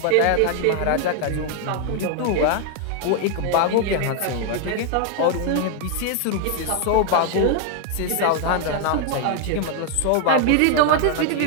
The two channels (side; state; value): both; different; correlation 0.00